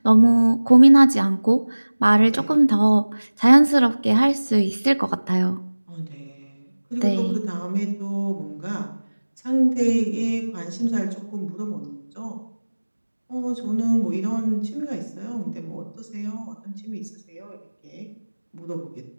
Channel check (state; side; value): inverted; both; correlation -1.00